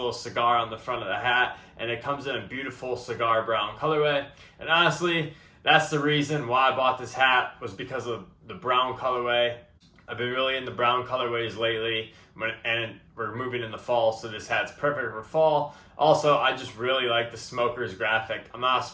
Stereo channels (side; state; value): both; identical; correlation 1.00